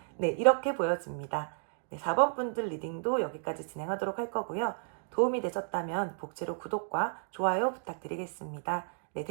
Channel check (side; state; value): left; silent; digital silence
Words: 네, 이렇게 보여집니다. 네, 4번 분들 리딩도 여기까지 진행하도록 할 거고요. 도움이 되셨다면 복지로 구독과 좋아요 부탁드리겠습니다. 네,